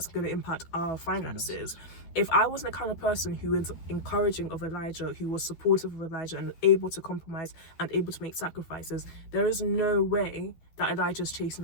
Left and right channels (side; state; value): right; late; 12 ms